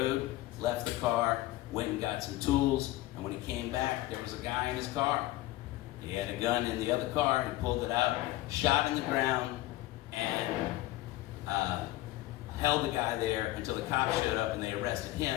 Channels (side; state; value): right; quieter; 16.9 dB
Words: left the car, went and got some tools, and when he came back, there was a guy in his car. He had a gun in the other car, he pulled it out, shot in the ground, and held the guy there until the cops showed up and they arrested